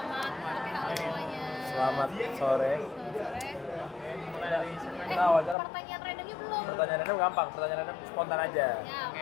Mat, oke halo semuanya. Selamat sore. Nah, wawancara Pertanyaan randomnya belum? pertanyaan random gampang, pertanyaan random spontan aja. Ya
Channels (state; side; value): drops out; right; at 5.6 s